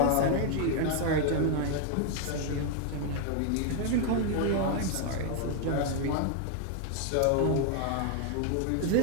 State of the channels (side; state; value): both; different; correlation 0.00